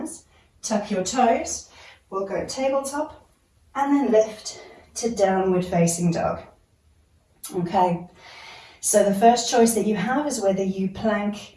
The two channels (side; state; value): both; identical; correlation 1.00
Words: tuck your toes, we'll go tabletop, and then lift to downward facing dog. Okay, so the first choice that you have is whether you plank